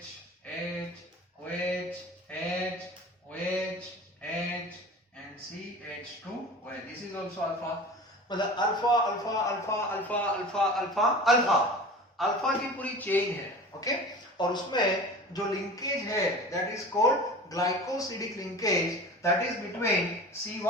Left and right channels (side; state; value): both; normal; correlation 0.37